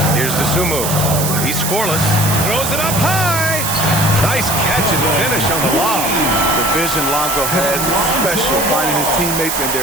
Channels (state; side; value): noise; right; hiss, 2 dB below the sound